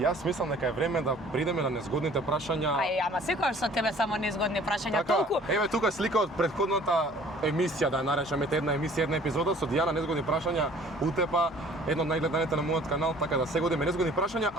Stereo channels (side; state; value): both; normal; correlation 0.52